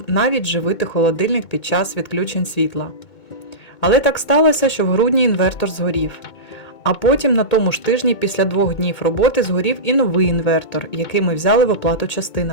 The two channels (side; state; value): right; late; 2.2 ms